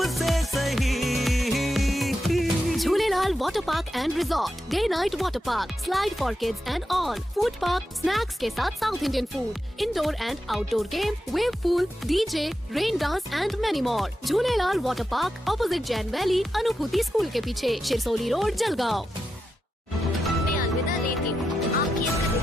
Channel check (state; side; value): normal; both; correlation 0.88